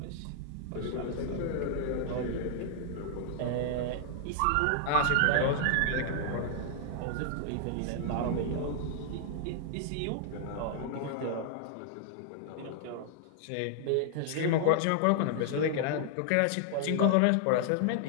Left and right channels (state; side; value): different; both; correlation -0.01